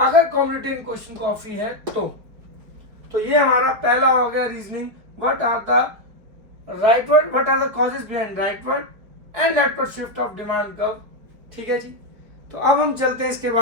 कॉमोडिटी इन क्वेश्चन कॉफी है तो ये हमारा पहला हो गया reasoning, what are the rightward, what are the causes behind rightward and leftward shift of demand curve, ठीक है जी। तो अब हम चलते हैं इसके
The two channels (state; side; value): late; left; 4.8 ms